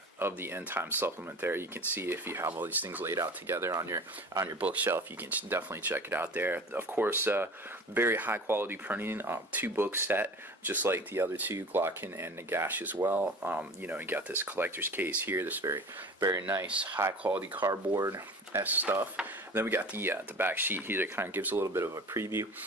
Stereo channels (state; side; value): normal; both; correlation 0.39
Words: the End Times supplement. There, you can see if you have all these things laid out together on your bookshelf. You can definitely check it out there. Of course, very high quality printing, 2-book set, just like the other two, Glocken and Nagash as well. You got this collector's case here, this very nice high quality cardboard stuff. Then we got the back sheet here that kind of gives a little bit of a preview